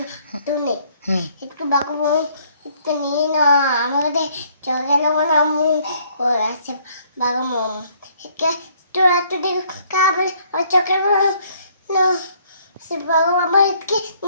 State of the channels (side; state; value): both; inverted; correlation -0.63